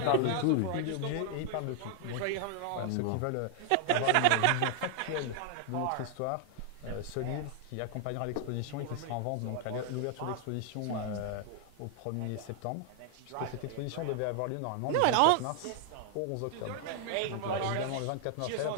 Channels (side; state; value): both; different; correlation 0.00